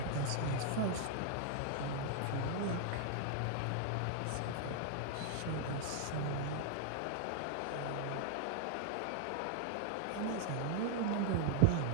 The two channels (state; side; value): different; both; correlation 0.00